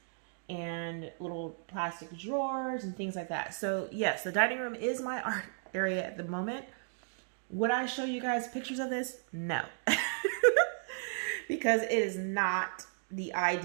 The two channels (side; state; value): left; silent; digital silence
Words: and little plastic drawers and things like that. So yes, the dining room is my art area at the moment. Would I show you guys pictures of this? No. Because it is not the